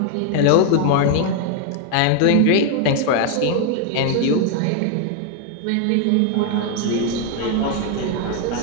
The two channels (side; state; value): both; different; correlation 0.00